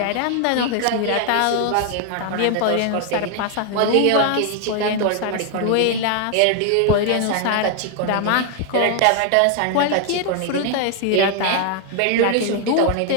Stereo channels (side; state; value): both; different; correlation 0.00